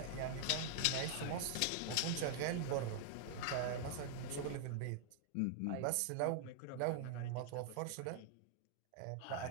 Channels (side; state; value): both; different; correlation -0.01